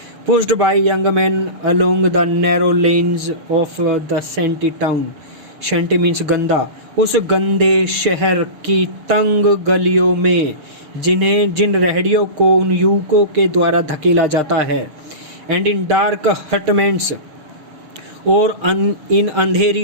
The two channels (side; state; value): left; late; 6.4 ms